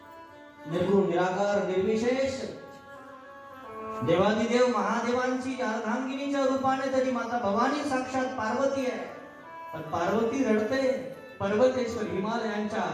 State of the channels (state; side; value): identical; both; correlation 1.00